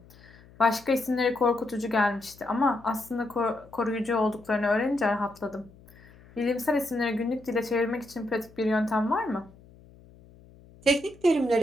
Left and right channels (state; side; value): noise; left; hum, 24 dB below the sound